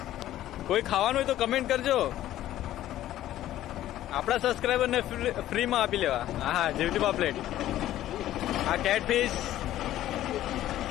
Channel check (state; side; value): quieter; right; 13.4 dB